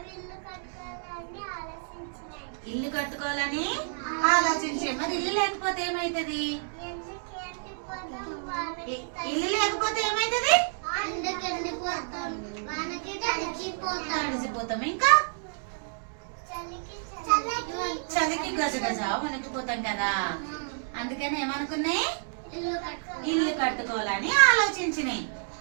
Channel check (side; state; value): left; silent; digital silence